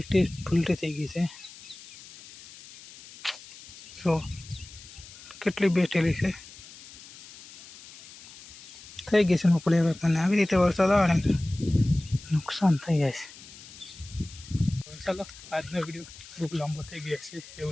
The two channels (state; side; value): noise; left; hiss, 18 dB below the sound